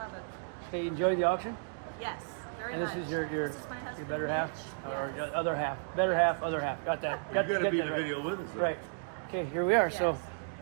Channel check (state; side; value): silent; left; digital silence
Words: it. okay, you enjoy the auction? Yes, very And this much. is your This is my your husband, better half Mitch. or Yes. your other half, better half, other half. Got that? You're going to be in that the right. video with us. Then. Right. Okay, here we are. So, Yes.